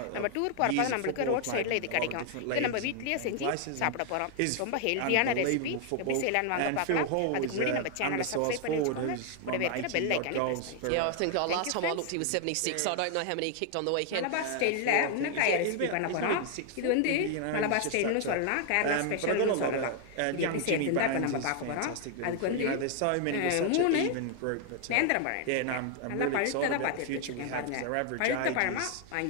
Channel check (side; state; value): both; different; correlation 0.00